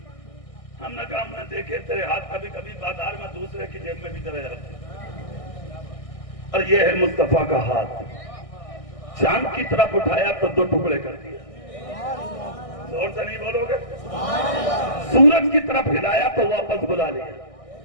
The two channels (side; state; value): right; late; 1.6 ms